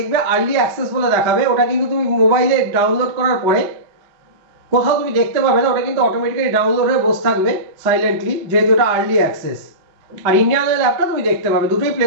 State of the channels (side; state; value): left; late; 5.1 ms